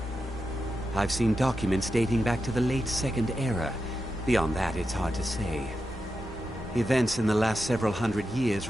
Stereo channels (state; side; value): normal; both; correlation 0.88